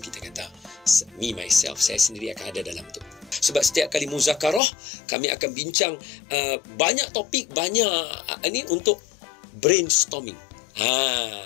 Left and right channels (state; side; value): drops out; right; at 4.6 s